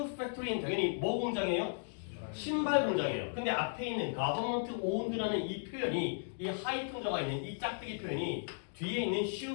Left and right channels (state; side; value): silent; right; digital silence